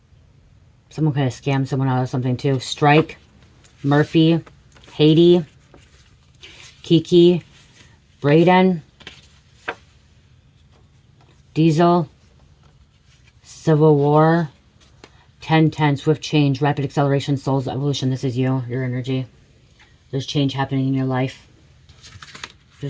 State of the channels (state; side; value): identical; both; correlation 1.00